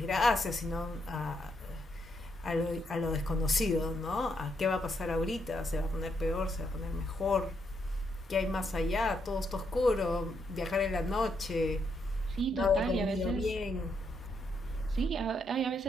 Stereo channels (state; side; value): normal; both; correlation 0.77